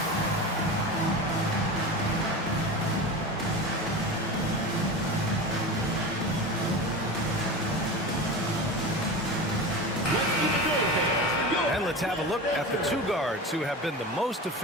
Let's have a look at the 2 guards who have been the most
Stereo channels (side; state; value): both; normal; correlation 0.27